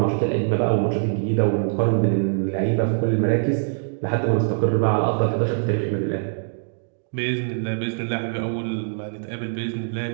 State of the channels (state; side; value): silent; left; digital silence